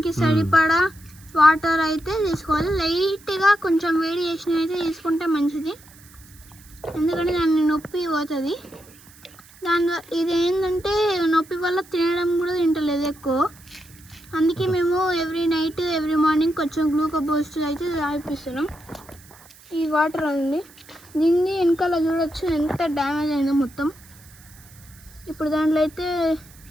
సరిపడా వాటర్ అయితే తీసుకోవాలి. లైట్గా కొంచెం వేడి చేసిన అయితే తీసుకుంటే మంచిది, ఎందుకంటే దాన్ని నొప్పి పోతుంది. ఇది ఏంటంటే నొప్పి వల్ల తినడం కూడా తింటలేదు ఎక్కువ. అందుకే మేము ఎవ్రీ నైట్ ఎవ్రీ మార్నింగ్ కొంచెం గ్లూకోజ్ బూస్ట్ అయితే తాగిపిస్తున్నాం. ఈ వాటర్ అండి, దీన్ని వెనకాల చూడొచ్చు ఎంత డ్యామేజ్ అయిందో మొత్తం. ఇప్పుడు దాంట్లో అయితే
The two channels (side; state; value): right; noise; hiss, 24 dB below the sound